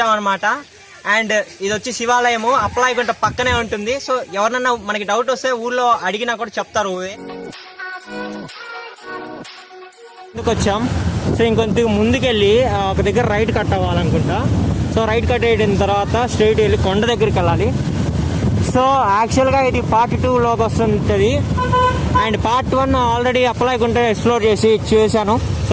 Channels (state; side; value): identical; both; correlation 1.00